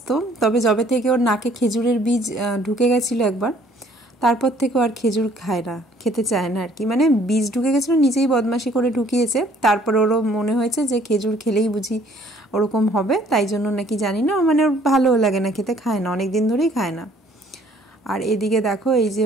তবে যবে থেকে ওর নাকে খেজুরের বীজ ঢুকে গেছিলো একবার, তারপর থেকে আর খেজুর খায় না, খেতে চায় না আর কি। মানে বীজ ঢুকে গেছিলো, নিজেই বদমাশি করে ঢুকিয়েছে, তারপর ওরও মনে হয়েছে যে খেজুর খেলেই বুঝি ওরকম হবে, তাই জন্য নাকি জানি না, মানে ওর ভালোও লাগে না খেতে, খায় না, অনেক দিন ধরেই খায় না। আর এদিকে দেখো এই যে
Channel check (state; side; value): normal; both; correlation 0.59